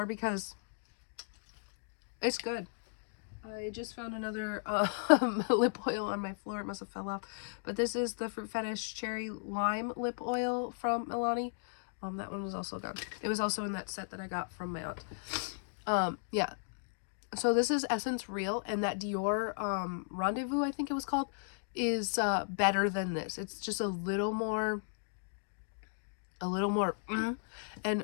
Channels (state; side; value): silent; right; digital silence